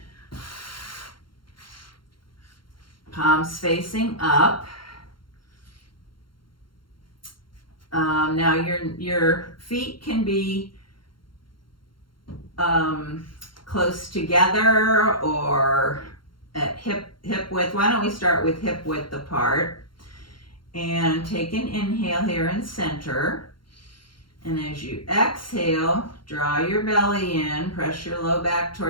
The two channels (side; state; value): right; late; 0.73 ms